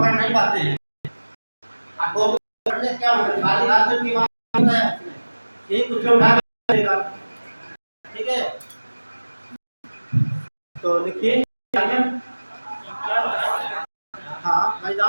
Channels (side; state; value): both; inverted; correlation -1.00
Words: नहीं पाते हैं, आपको पकड़ने से क्या मतलब खाली हाथ में की बात है, यही कुछ उठा के देगा। ठीक है, तो लिखिए आगे। हाँ,